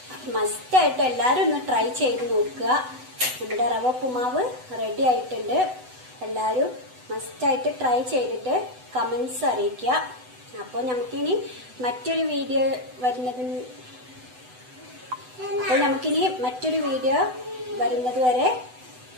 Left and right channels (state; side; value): late; left; 8.0 ms